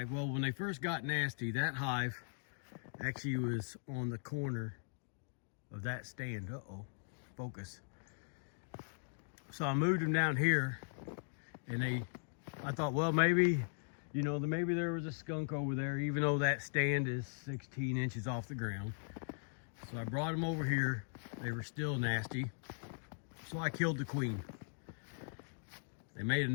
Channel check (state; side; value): silent; right; digital silence